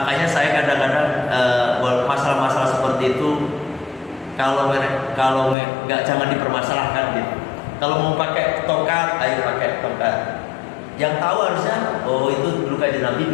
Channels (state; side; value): drops out; right; at 5.6 s